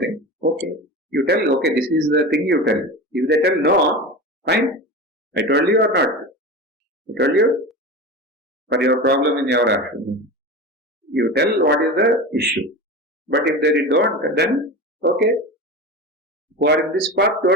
okay. You tell, okay, this is the thing you tell. If they tell no, fine. I told you or not? I told you? For your problem in your action. You tell what is the issue. But if they don't, then, okay. Who are in this path,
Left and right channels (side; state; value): both; normal; correlation 0.27